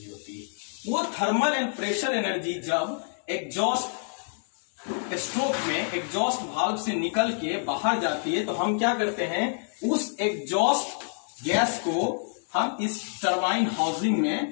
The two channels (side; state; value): right; silent; 60 dB below the other